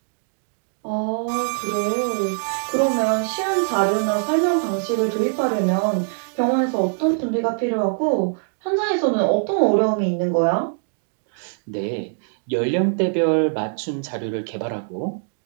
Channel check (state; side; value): silent; left; digital silence